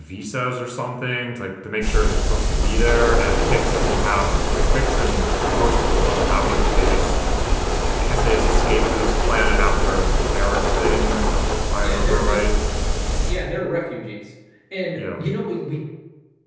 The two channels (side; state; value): both; identical; correlation 1.00